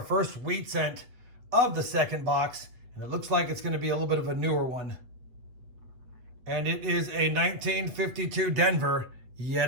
first wheat cent of the second box, and it looks like it's going to be a little bit of a newer one. And it is a 1952 Denver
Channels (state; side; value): late; left; 7.8 ms